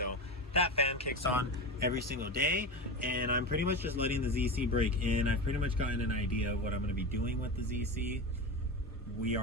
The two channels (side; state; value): both; normal; correlation 0.23